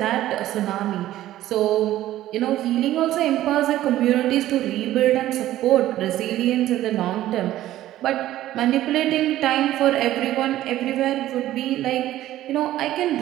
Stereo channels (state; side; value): quieter; left; 14.1 dB